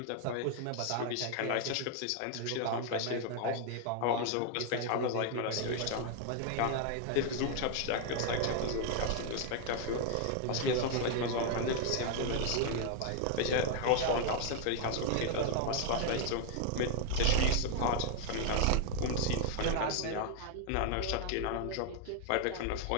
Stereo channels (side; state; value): both; different; correlation 0.00